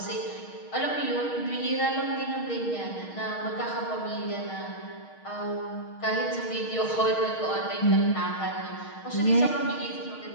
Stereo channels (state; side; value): late; right; 6.4 ms